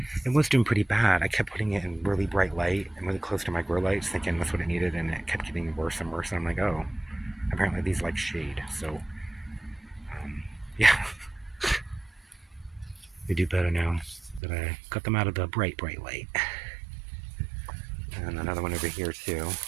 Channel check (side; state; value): left; drops out; at 14.4 s